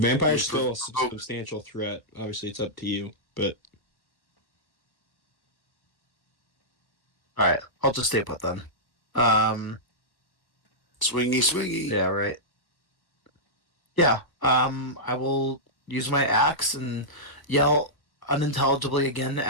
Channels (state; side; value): late; right; 1.2 ms